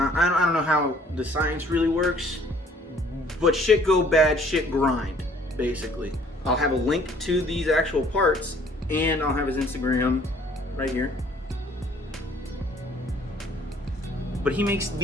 I don't know how the science really works, but shit go bad, shit grind, basically. I'll have a link to these actual parts, and I'll have his Instagram right here. But he makes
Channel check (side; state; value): both; normal; correlation 0.58